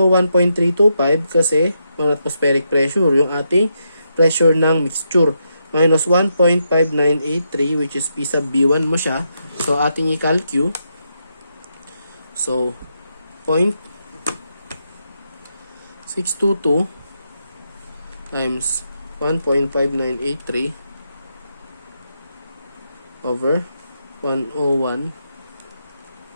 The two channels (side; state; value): both; inverted; correlation -0.82